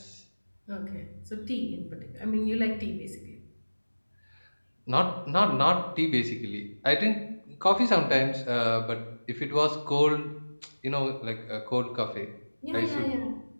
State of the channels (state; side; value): inverted; both; correlation -1.00